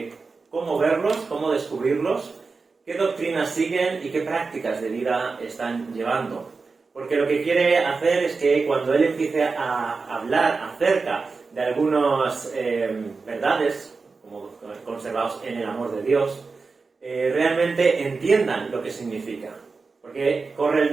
cómo verlos, cómo descubrirlos, qué doctrinas siguen y qué prácticas de vida están llevando. Porque lo que quiere hacer es que cuando él empiece a hablar acerca de algunas verdades, como conservados en el amor de Dios, realmente entiendan lo que significa. Porque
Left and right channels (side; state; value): left; quieter; 4.4 dB